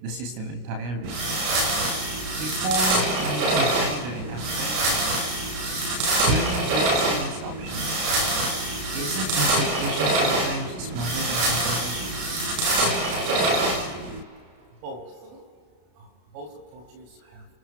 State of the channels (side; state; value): left; late; 33 ms